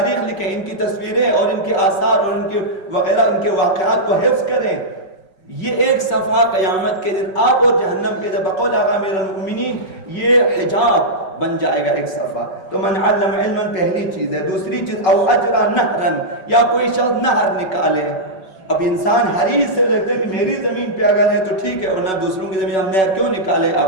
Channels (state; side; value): late; right; 5.3 ms